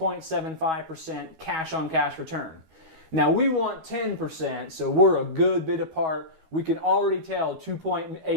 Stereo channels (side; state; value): left; late; 12 ms